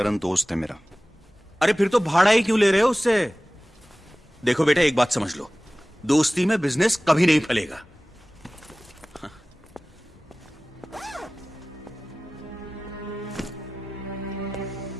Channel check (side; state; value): both; normal; correlation 0.98